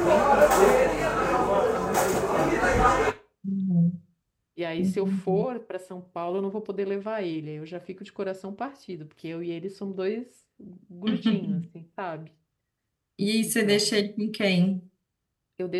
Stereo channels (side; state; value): both; identical; correlation 1.00